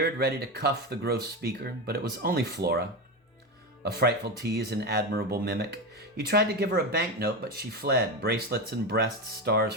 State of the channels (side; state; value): both; normal; correlation 0.17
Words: ready to cuff the gross speaker, but it was only Flora. A frightful tease and admirable mimic. He tried to give her a banknote, but she fled, bracelets and breast stars